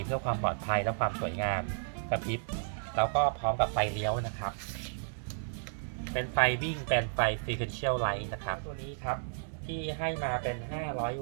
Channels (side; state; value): left; silent; 56 dB below the other